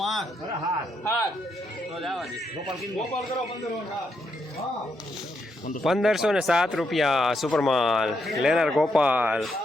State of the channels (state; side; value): normal; both; correlation 0.79